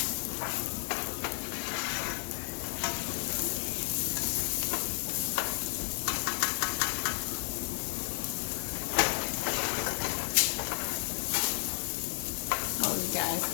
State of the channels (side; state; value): right; silent; 56 dB below the other